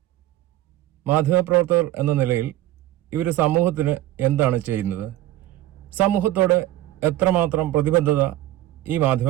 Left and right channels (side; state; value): left; quieter; 14.7 dB